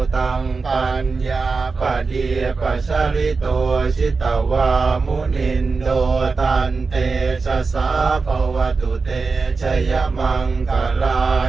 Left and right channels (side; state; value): left; quieter; 4.4 dB